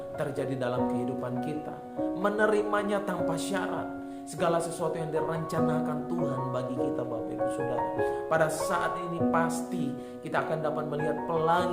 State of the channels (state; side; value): identical; both; correlation 1.00